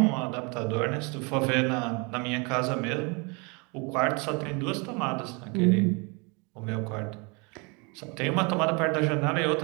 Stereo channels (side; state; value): left; quieter; 30.5 dB